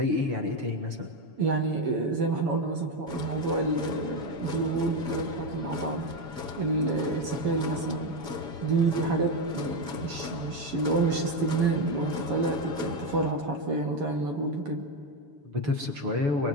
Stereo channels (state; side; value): late; left; 7.1 ms